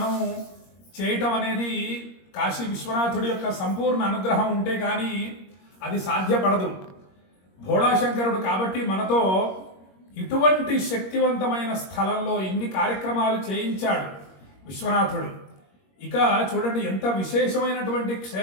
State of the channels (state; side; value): late; right; 21 ms